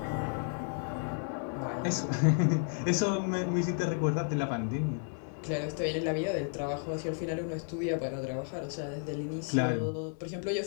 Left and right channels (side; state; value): right; silent; 56 dB below the other